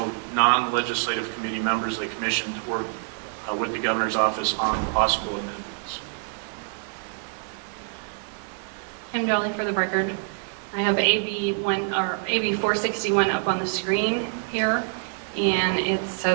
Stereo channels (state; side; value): silent; left; 61 dB below the other